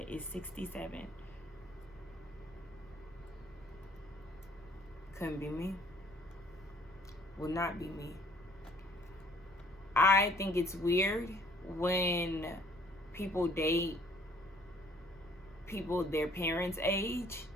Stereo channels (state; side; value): normal; both; correlation 0.58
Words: is 67. Couldn't be me. Will not be me. I think it's weird when people date people their parents' age.